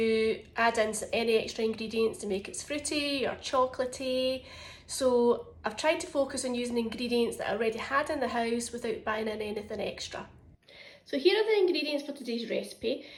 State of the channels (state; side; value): identical; both; correlation 1.00